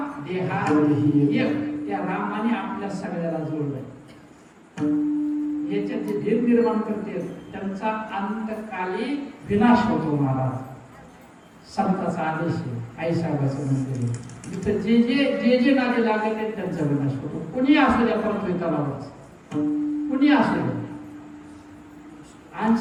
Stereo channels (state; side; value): identical; both; correlation 1.00